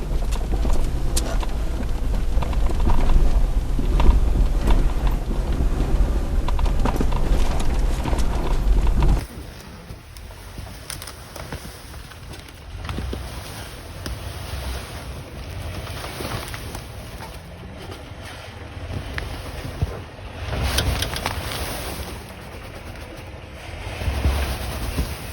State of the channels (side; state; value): both; identical; correlation 1.00